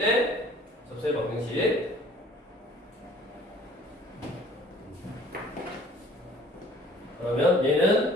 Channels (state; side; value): normal; both; correlation 0.53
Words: 접수의 방정식. 그러면